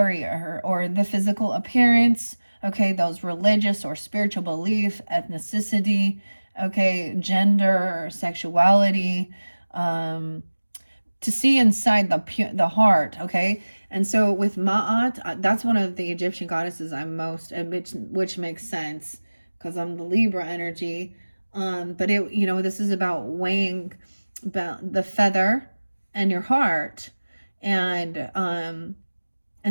or the physical appearance, okay, those religious or spiritual belief, ethnicity, okay, gender, sexuality, to see inside the heart, okay. And so with Ma'at, that's one of the Egyptian goddesses I'm most, which makes sense because I'm the Libra energy. But it, this is about weighing about the feather and your heart. And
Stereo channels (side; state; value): both; inverted; correlation -1.00